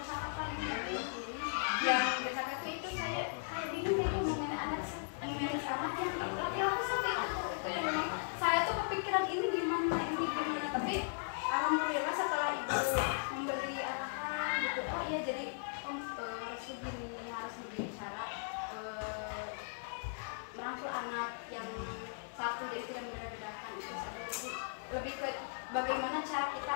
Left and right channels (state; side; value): silent; right; digital silence